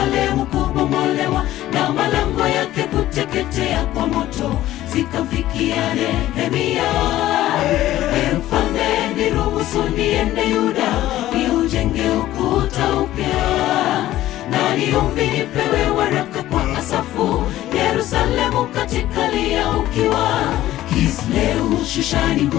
kubomolewa na malango yake kuteketea kwa moto zikamfikia Nehemia. Mfalme, niruhusu niende Yuda niujenge ukuta upya, na niombi nipewe waraka kwa Asafu, Yerusalemu katika lia ukiwa. Kisleu Shushani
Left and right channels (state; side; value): quieter; right; 14.5 dB